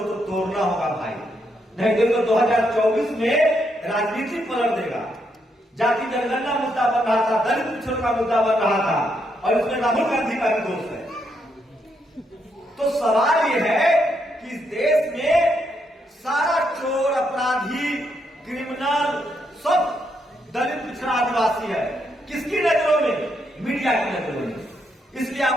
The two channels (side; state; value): both; normal; correlation 0.78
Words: तो तोड़ना होगा भाई, नहीं तो 2024 में राजनीति पलट देगा। जाति जनगणना मुद्दा बन रहा था, दलित पिछड़ों का मुद्दा बन रहा था, और इसमें राहुल गांधी का भी दोष है। तो सवाल यह है कि इस देश में सारा चोर, अपराधी, क्रिमिनल सब दलित, पिछड़ा, आदिवासी है। किसकी नजरों में? मीडिया की नजरों में। इसलिए